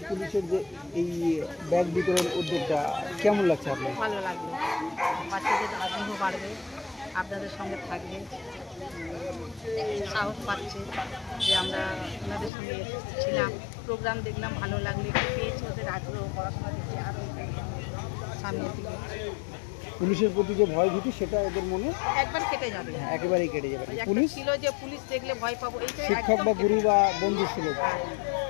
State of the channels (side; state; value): right; drops out; at 12.5 s